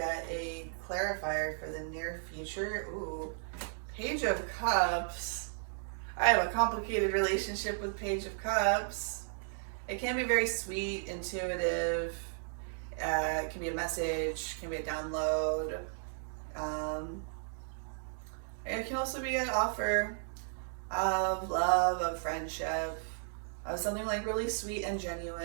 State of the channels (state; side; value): silent; left; digital silence